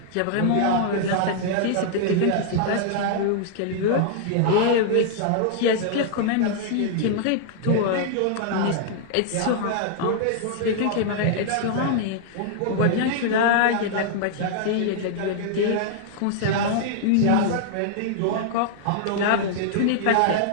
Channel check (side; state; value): both; different; correlation -0.01